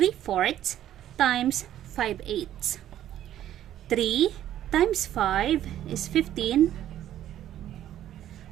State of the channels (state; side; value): quieter; left; 11.9 dB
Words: times 5/8. 3 times 5 is 15.